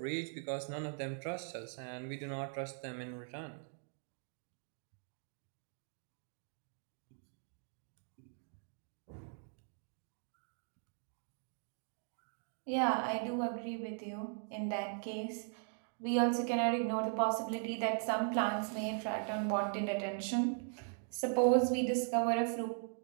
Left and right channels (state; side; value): silent; left; 51 dB below the other